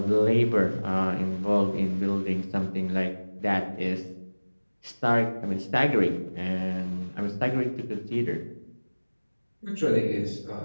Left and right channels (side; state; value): both; inverted; correlation -1.00